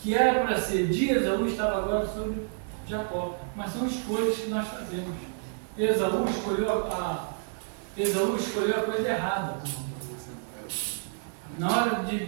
era para ser de Esaú estava agora sobre Jacó. Mas são escolhas que nós fazemos. Esaú escolheu a coisa errada. Na hora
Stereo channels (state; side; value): silent; left; digital silence